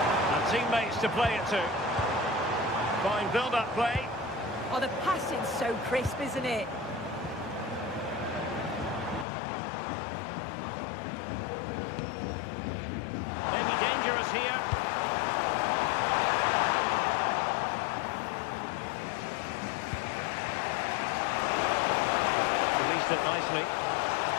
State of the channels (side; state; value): right; drops out; at 9.2 s